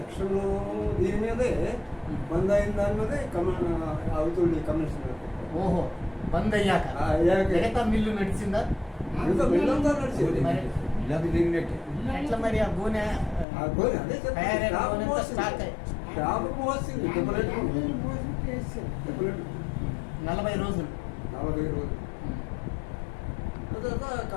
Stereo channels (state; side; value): drops out; right; at 13.5 s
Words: దీని మీదే బంద్ అయిన దాని మీదే అవుతుంది కమిషనర్. ఓహో, బంద్ అయ్యాక మిగతా మిల్లు నడిచిందా? మిల్లు అంతా నడిచింది. ఎట్లా మరి ఆ గోనె అదే స్టాక్ 40 రోజులు. తర్వాత